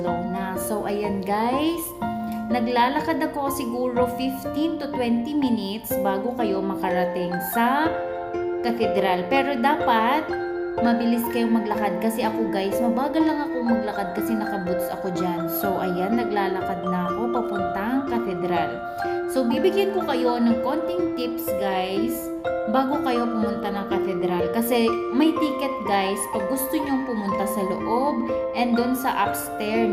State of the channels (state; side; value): identical; both; correlation 1.00